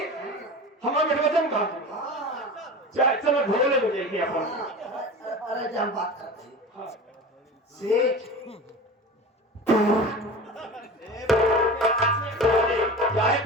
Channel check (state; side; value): normal; both; correlation 0.33